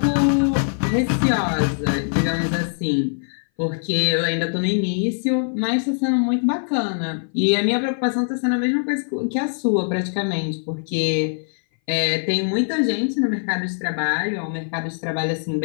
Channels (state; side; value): silent; right; 59 dB below the other